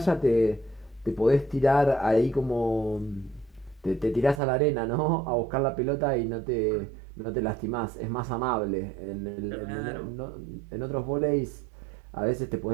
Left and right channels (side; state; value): left; drops out; at 4.4 s